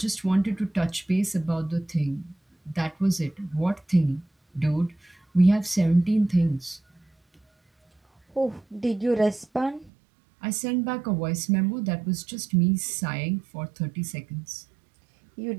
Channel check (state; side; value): drops out; left; at 9.9 s